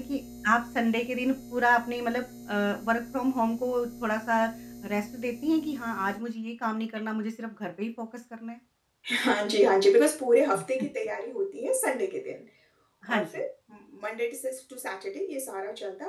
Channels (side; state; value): both; identical; correlation 1.00